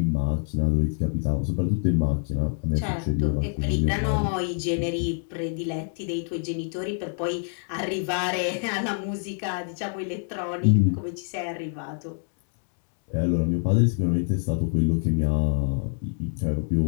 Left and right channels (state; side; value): silent; right; 61 dB below the other